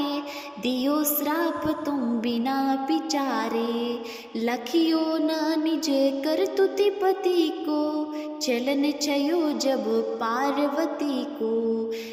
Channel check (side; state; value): both; identical; correlation 1.00